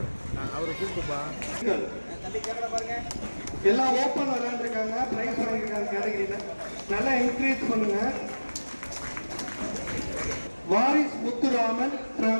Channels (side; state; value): both; inverted; correlation -1.00